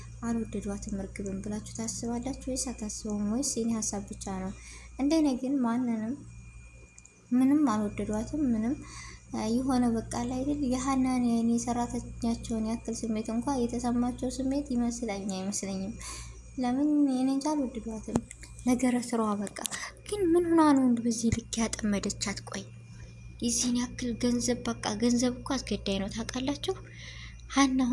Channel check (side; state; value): both; identical; correlation 1.00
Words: አልወደዷትም እርግብን ብላችሁ ታስባላችሁ ወይስ አታስቡም? ወይስ የኔ ሀሳብ ብቻ ነው? እንደኔ ግን ምንም አልወደዷትም። ምንም የሆነ በቃ ላይ አይደል የሀናን የኔ ሰራተኛቸውን ያክል ስሜት እንኳን የተሰማቸው ስሜት ይመስለኝ አይመስለኝም። ለምን የኔ እንጃ አልወደዷትም። ነገረ ስራዋ በቃ ግን ምን ሆና ነው በዚህ ልክ ያጠመደቻት? ቆይ የዚህን ያክል ገንዘብ በቃ ገንዘብ እኮ አስገዳይ ነው ታውቃላችሁ። ሀና